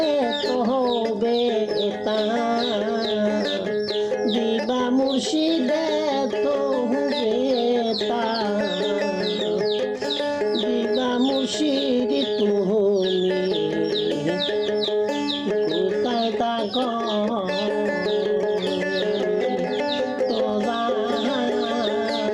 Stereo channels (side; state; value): both; identical; correlation 1.00